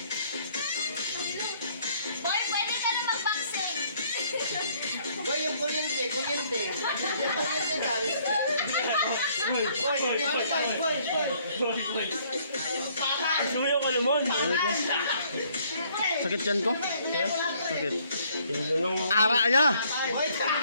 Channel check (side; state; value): both; inverted; correlation -0.64